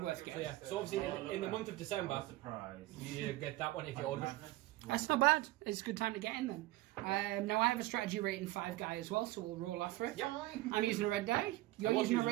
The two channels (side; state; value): left; quieter; 17.9 dB